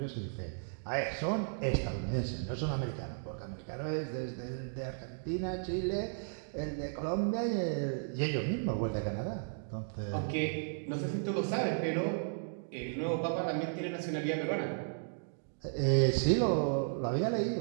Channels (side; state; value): left; silent; digital silence